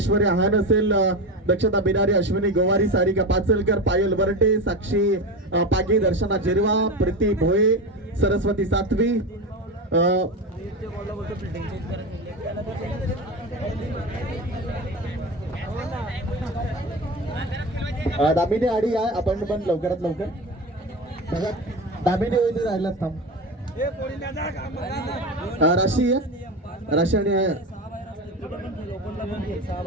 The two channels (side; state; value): both; normal; correlation 0.22